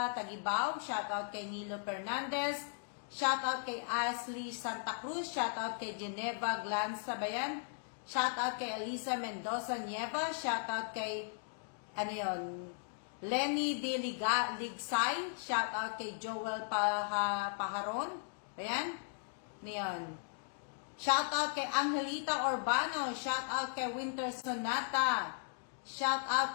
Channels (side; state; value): right; silent; digital silence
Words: Tagibaw. Shout out kay Nilo Fernandez. Shout out kay Ashley Santa Cruz. Shout out kay Geneva Glanza Bayan. Shout out kay Elisa Mendoza Nieva. Shout out kay, Lenny De Ligsay. Shout out kay Joel Paharon. Ayan. Niyon. Shout out kay Angelita Urbano. Shout out kay Winter Sonata. Shout